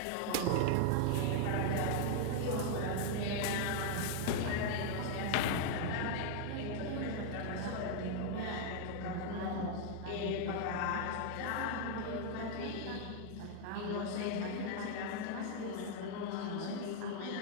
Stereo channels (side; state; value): both; different; correlation 0.00